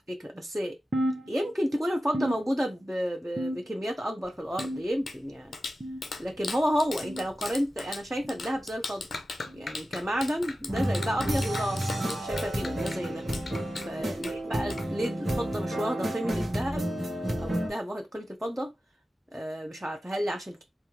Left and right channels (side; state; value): both; normal; correlation 0.93